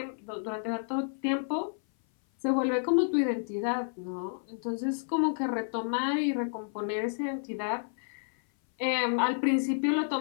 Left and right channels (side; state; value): right; silent; 56 dB below the other